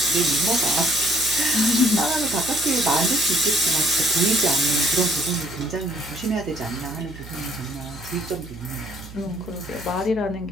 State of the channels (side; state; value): right; noise; hum, 15 dB below the sound